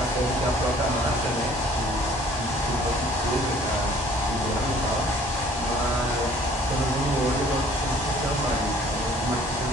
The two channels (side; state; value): both; normal; correlation 0.55